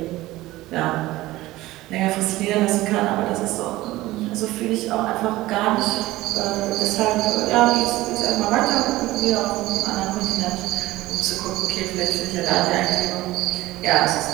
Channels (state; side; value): quieter; left; 17.6 dB